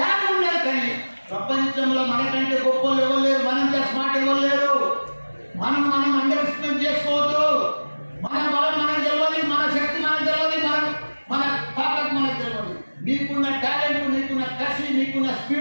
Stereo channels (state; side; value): inverted; both; correlation -1.00